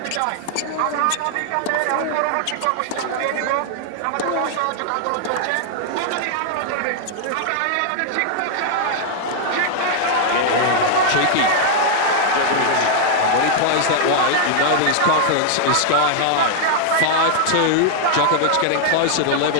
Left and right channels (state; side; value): different; both; correlation -0.01